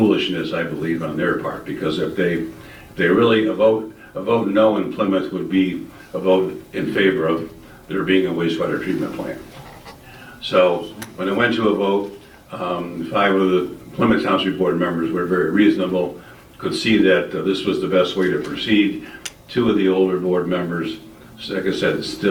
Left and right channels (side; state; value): both; identical; correlation 1.00